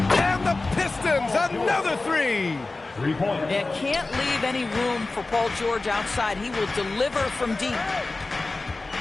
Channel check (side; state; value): right; quieter; 3.4 dB